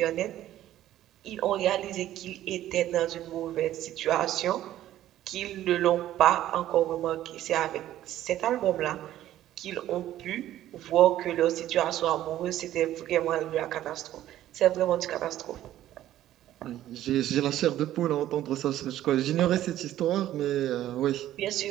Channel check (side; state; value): left; quieter; 13.1 dB